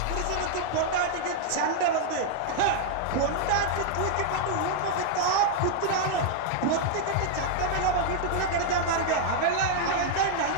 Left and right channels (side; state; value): both; different; correlation -0.01